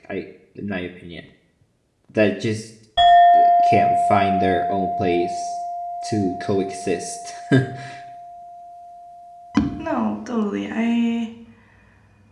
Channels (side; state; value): both; identical; correlation 1.00